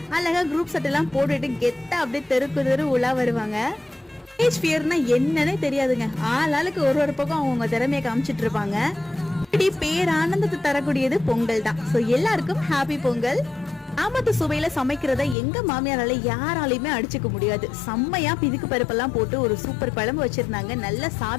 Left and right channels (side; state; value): right; drops out; at 15.4 s